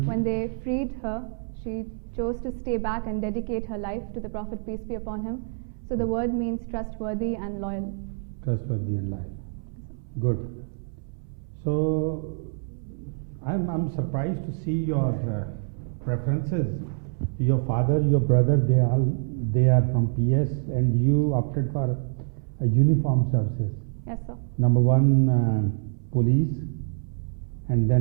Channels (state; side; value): silent; left; 61 dB below the other